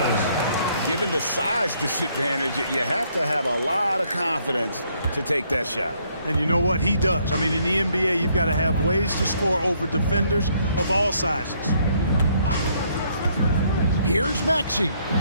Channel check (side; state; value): both; inverted; correlation -0.69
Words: Given the size disadvantage, you have to have a lot of confidence to take that shot. And you know what? He does. I mean, in the NBA, you've got to have ways to score over defenders of all sizes. Here's Maxey.